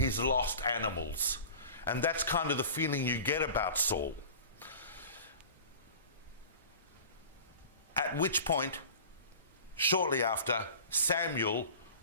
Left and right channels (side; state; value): both; inverted; correlation -0.39